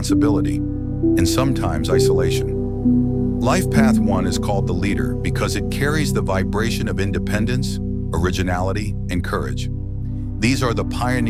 and sometimes isolation. Life path 1 is called the leader because it carries the vibration of independence, originality, and courage. These are the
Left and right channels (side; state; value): both; identical; correlation 1.00